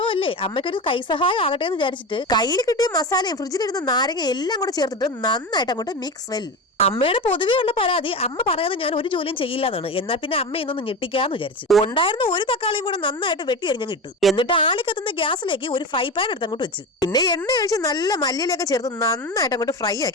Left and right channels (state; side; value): normal; both; correlation 0.24